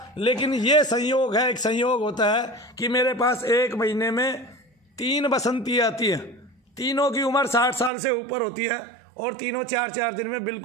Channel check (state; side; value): drops out; left; at 7.9 s